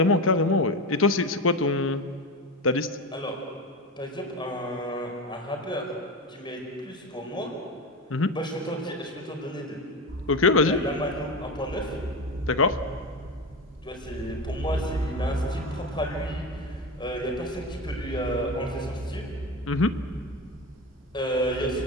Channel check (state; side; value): normal; both; correlation 0.22